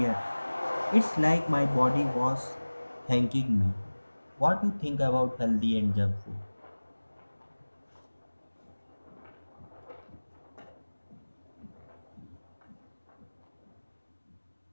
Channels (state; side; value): inverted; both; correlation -1.00